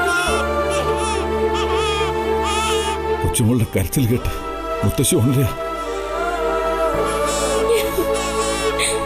കൊച്ചുമോളുടെ കരച്ചിൽ കേട്ട് മുത്തശ്ശി ഉണരുക.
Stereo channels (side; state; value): both; identical; correlation 1.00